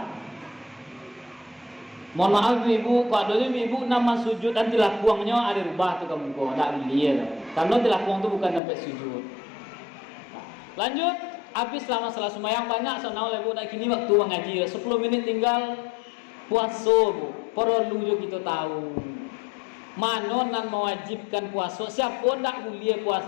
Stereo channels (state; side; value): drops out; right; at 8.6 s